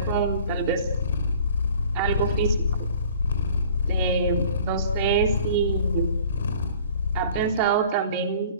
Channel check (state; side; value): inverted; both; correlation -0.50